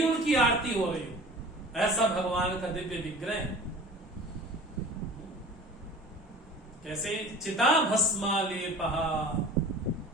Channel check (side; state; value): both; normal; correlation 0.42